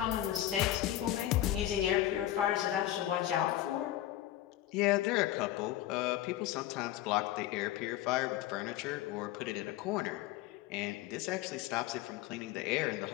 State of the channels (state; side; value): quieter; right; 13.7 dB